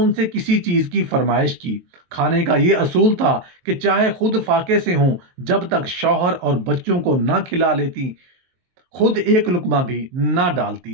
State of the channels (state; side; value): late; left; 23 ms